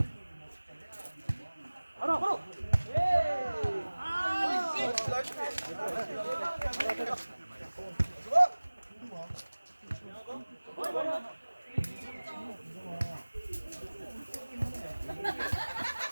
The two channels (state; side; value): inverted; both; correlation -1.00